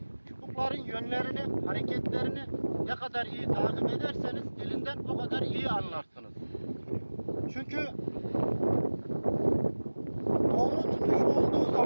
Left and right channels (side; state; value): both; inverted; correlation -1.00